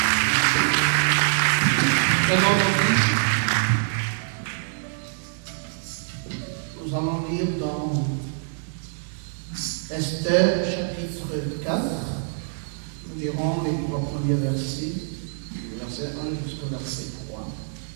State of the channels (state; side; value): silent; left; digital silence